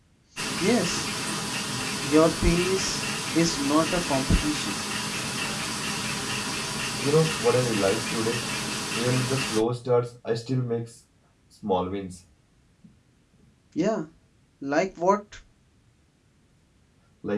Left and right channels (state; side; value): identical; both; correlation 1.00